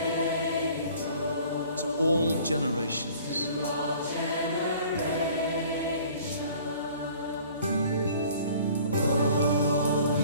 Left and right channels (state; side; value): inverted; both; correlation -0.51